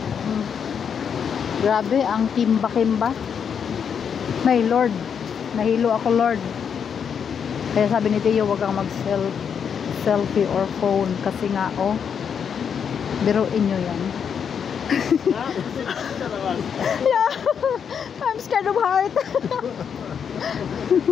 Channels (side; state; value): right; quieter; 7.3 dB